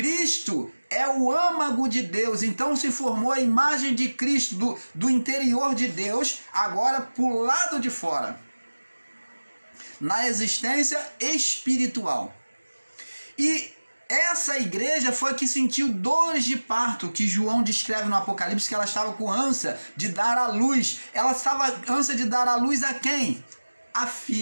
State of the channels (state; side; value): inverted; both; correlation -1.00